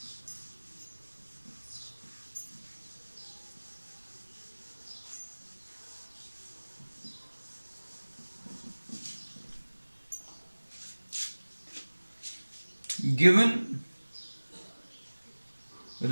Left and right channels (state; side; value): inverted; both; correlation -1.00